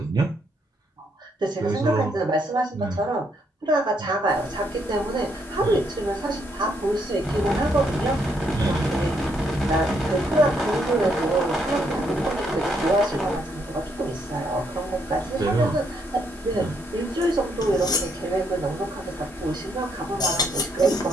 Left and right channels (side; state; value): both; normal; correlation 0.74